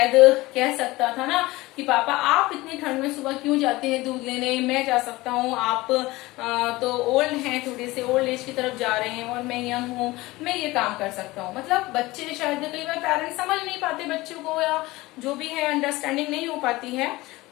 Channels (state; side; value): quieter; right; 19.9 dB